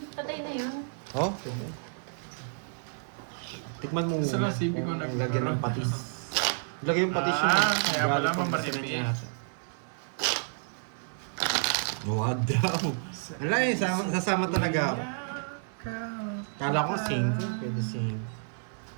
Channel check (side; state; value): left; silent; 58 dB below the other